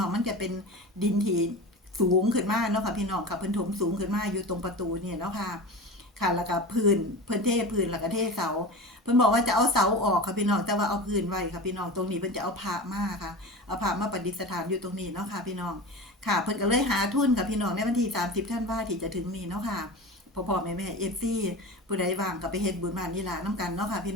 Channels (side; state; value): both; normal; correlation 0.30